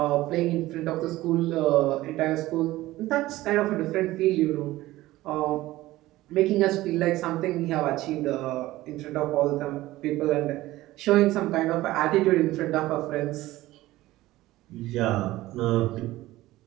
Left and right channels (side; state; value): left; quieter; 17.1 dB